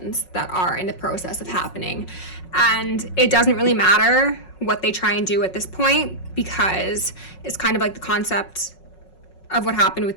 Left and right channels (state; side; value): late; right; 5.4 ms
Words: that are in the process of happening. And it doesn't really matter what they try and do at this point, because it's kind of like the concept of what happened